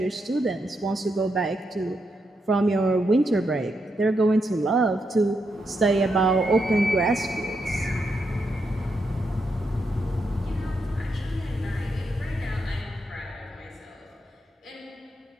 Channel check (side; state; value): both; normal; correlation 0.82